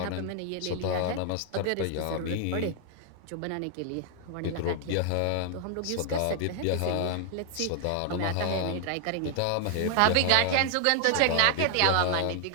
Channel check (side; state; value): both; different; correlation 0.00